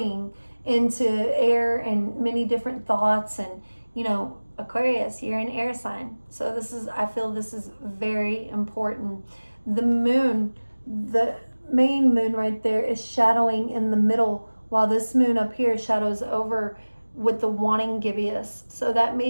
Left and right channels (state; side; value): inverted; both; correlation -1.00